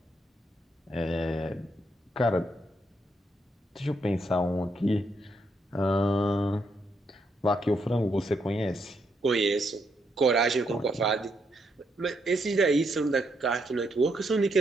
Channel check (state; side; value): normal; both; correlation 0.77